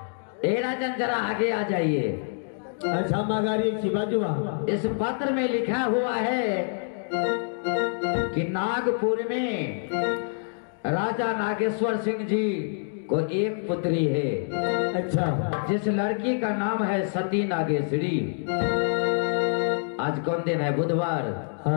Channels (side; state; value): right; silent; digital silence